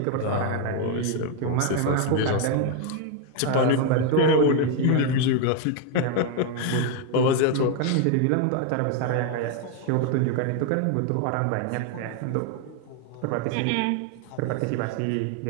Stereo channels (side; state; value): both; different; correlation 0.01